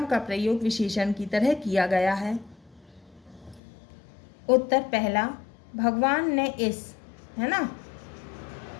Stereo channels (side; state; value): right; drops out; at 3.6 s